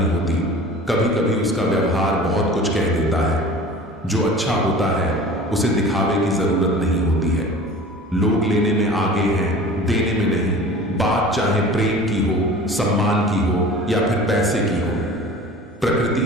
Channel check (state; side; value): normal; both; correlation 0.40